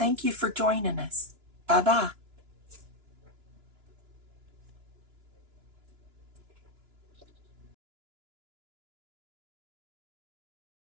you for joining us. Bye-bye.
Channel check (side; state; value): left; late; 2.9 ms